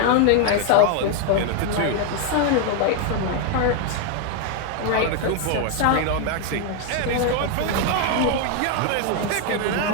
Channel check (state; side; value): different; both; correlation 0.01